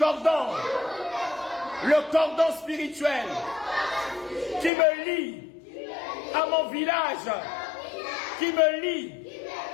le cordon spirituel qui me lie à mon village, qui me lie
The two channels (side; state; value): right; drops out; at 4.7 s